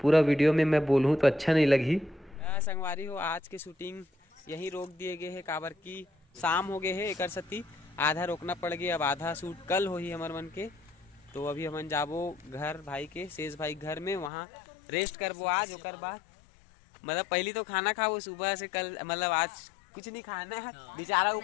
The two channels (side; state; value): right; drops out; at 14.3 s